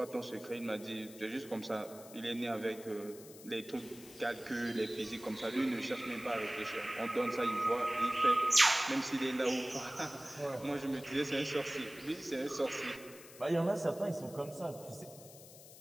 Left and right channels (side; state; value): left; noise; hiss, 18 dB below the sound